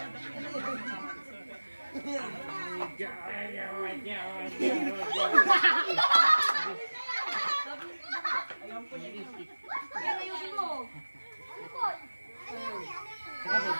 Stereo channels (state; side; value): inverted; both; correlation -1.00